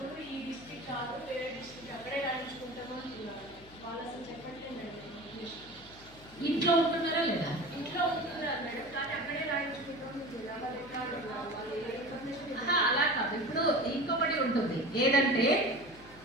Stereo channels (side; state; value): left; noise; hum, 22 dB below the sound